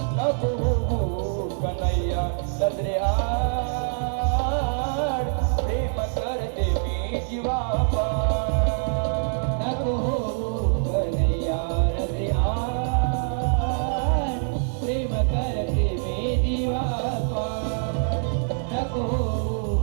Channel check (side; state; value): left; silent; digital silence